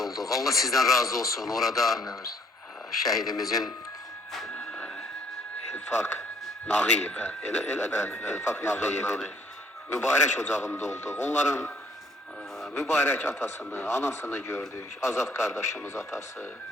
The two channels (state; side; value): normal; both; correlation 0.62